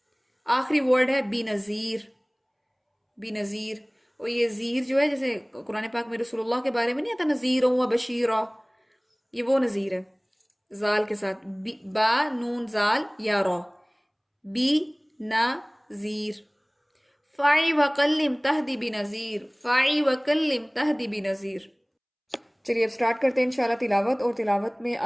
آخری ورڈ ہے بی نذیر. بی نذیر، اور یہ زیر جو ہے جیسے قرآن پاک میں رسول اللہ کے بارے میں نہیں آتا نذیر و بشیرہ، یہ وہ نذیر ہے زال کے ساتھ، با نون زال یا را، بی نذیر. فاعی وکلم تہدی بنذیر، فاعی وکلم تہدی بنذیر. چلیے اب سٹارٹ کرتے ہیں انشاءاللہ تلاوت، اور تلاوت میں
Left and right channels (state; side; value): identical; both; correlation 1.00